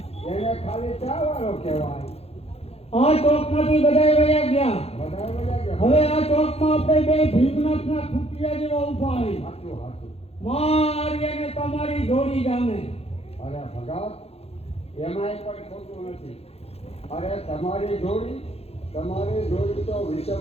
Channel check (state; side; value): late; right; 0.29 ms